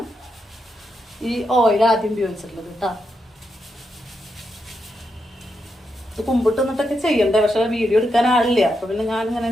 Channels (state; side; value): normal; both; correlation 0.83